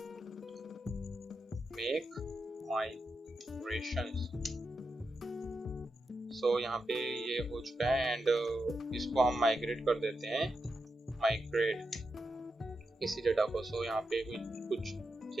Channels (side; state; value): both; normal; correlation 0.86